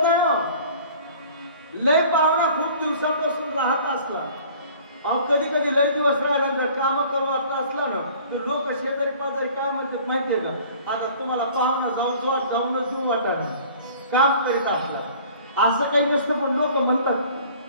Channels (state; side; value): inverted; both; correlation -0.49